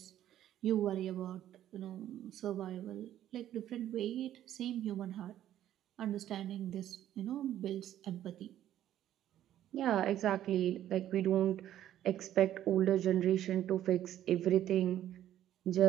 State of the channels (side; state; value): left; quieter; 12.0 dB